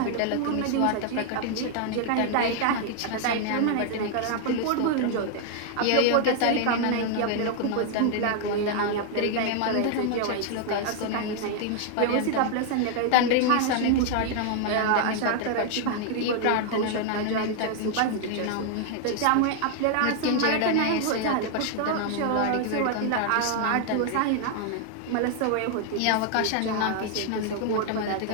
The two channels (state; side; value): different; both; correlation 0.00